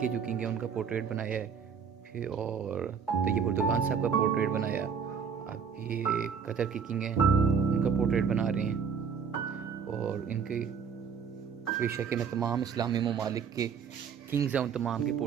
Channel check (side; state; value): left; quieter; 6.6 dB